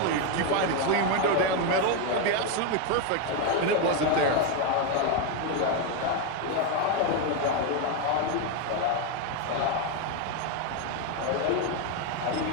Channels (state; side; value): different; both; correlation 0.02